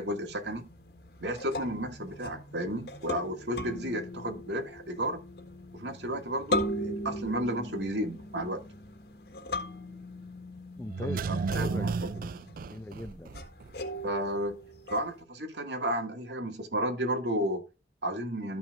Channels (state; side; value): normal; both; correlation 0.15